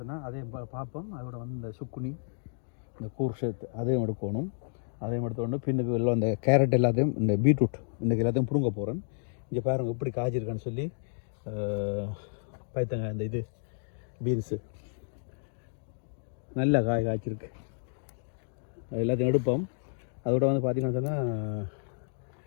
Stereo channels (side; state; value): right; silent; digital silence